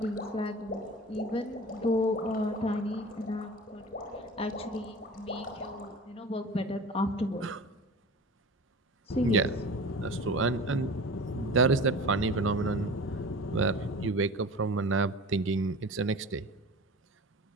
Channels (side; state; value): both; normal; correlation 0.36